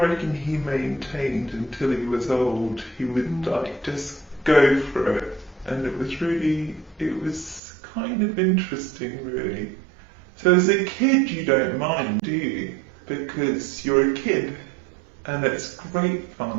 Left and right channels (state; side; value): drops out; left; at 7.6 s